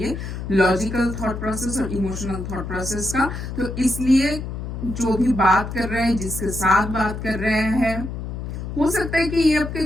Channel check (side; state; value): left; noise; hum, 6 dB below the sound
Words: लॉजिकल थॉट प्रोसेस और इमोशनल थॉट प्रोसेस का। तो इसलिए जो भी बात कर रहे हैं, जिसके साथ बात कर रहे हैं, हो सकता है कि ये आपके